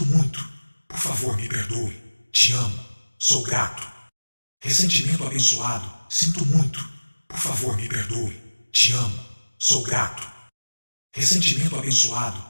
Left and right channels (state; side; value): inverted; both; correlation -1.00